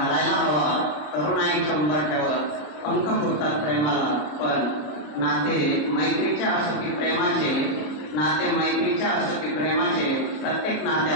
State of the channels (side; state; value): right; late; 33 ms